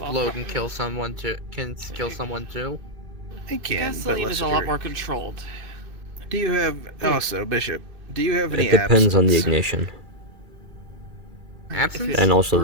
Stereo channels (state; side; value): late; left; 2.4 ms